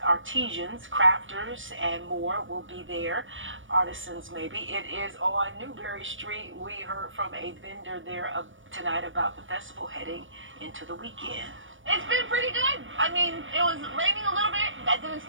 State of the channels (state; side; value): late; left; 0.57 ms